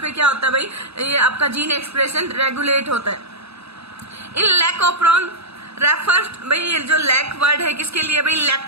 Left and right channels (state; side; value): late; left; 0.78 ms